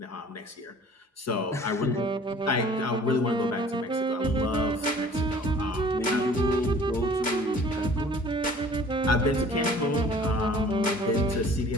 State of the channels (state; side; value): normal; both; correlation 0.50